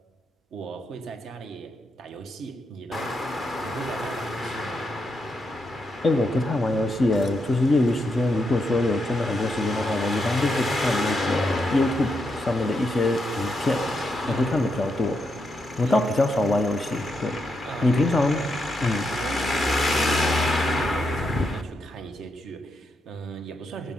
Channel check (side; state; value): both; normal; correlation 0.82